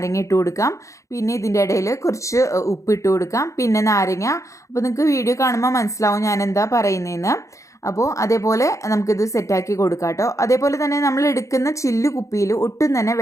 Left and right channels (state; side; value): late; right; 0.15 ms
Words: ഇട്ട് കൊടുക്കാം, പിന്നെ ഇതിൻ്റെ ഇടയിൽ കുറച്ച് ഉപ്പിട്ട് കൊടുക്കാം, പിന്നെ നാരങ്ങ. അപ്പോൾ നിങ്ങൾക്ക് വീഡിയോ കാണുമ്പോൾ മനസ്സിലാവും ഞാൻ എന്താ പറയുന്നതെന്ന്. അപ്പോൾ അതേപോലെ നമുക്കിത് സെറ്റാക്കി കൊടുക്കാം കേട്ടോ. അതേപോലെ തന്നെ നമ്മൾ എടുക്കുന്ന ചില്ലു കുപ്പിയിൽ ഒട്ടും തന്നെ